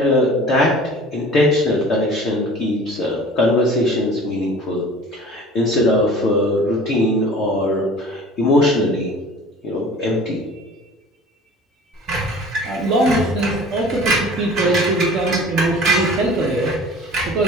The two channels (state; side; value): normal; both; correlation 0.44